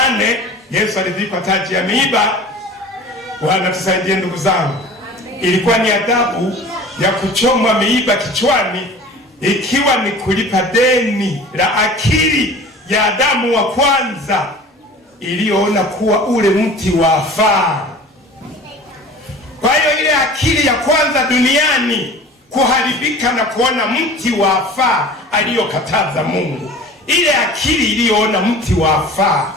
Yesu alivikwa taji ya miiba. Bwana tusaidie ndugu zangu. Ilikuwa ni adhabu ya kuchomwa miiba kichwani, ikiwa ni kulipa deni la akili ya Adamu wa kwanza iliyoona kuwa ule mti wafaa. Kwa hiyo ile akili ya kwanza duniani kuharibika na kuona mti wafaa aliyokataza Mungu, ile akili iliyoona mti wafaa,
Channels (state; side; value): normal; both; correlation 0.41